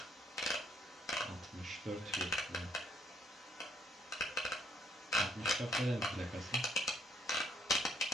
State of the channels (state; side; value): normal; both; correlation 0.68